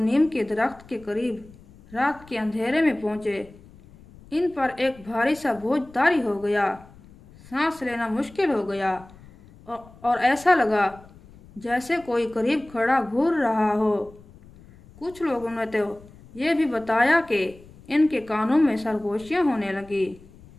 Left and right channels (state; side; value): noise; left; rumble, 23 dB below the sound